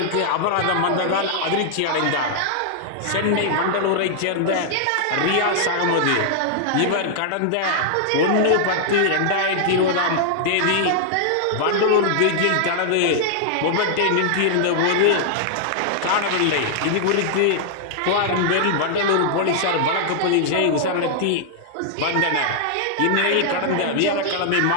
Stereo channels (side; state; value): both; different; correlation -0.01